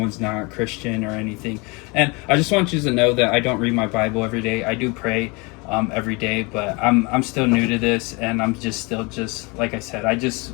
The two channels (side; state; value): right; quieter; 28.2 dB